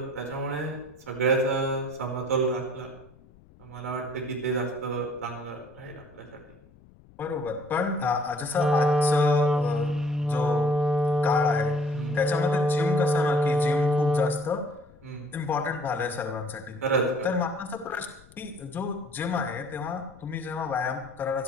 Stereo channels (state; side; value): noise; left; rumble, 26 dB below the sound